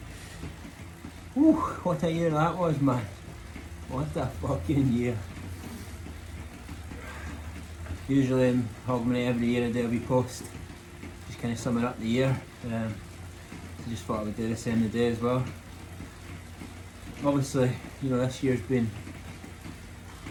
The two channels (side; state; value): both; identical; correlation 1.00